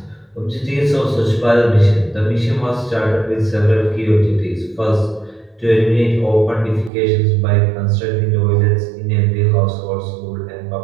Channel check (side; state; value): left; drops out; at 6.9 s